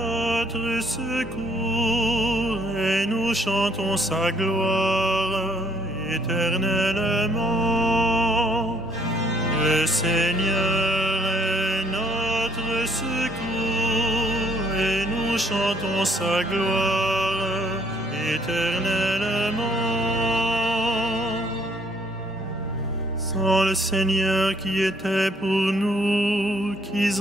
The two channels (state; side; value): normal; both; correlation 0.64